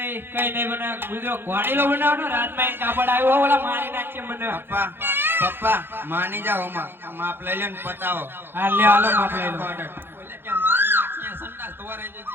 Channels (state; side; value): late; left; 0.10 ms